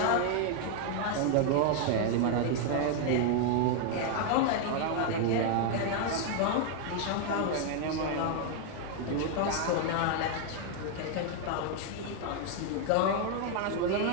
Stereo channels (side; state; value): both; different; correlation 0.00